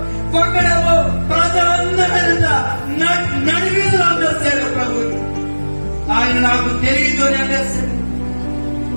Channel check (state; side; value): inverted; both; correlation -1.00